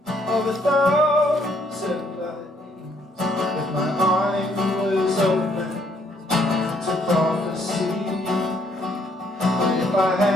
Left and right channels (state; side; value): normal; both; correlation 0.68